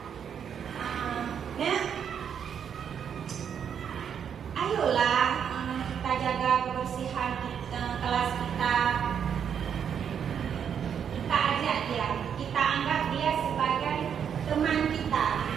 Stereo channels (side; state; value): left; quieter; 7.9 dB